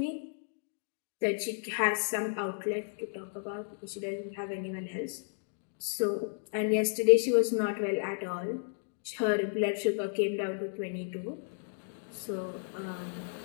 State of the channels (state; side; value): silent; right; digital silence